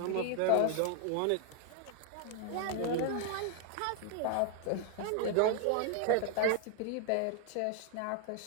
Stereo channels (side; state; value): both; different; correlation 0.00